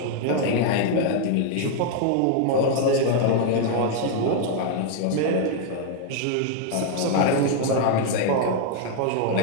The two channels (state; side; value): different; both; correlation 0.00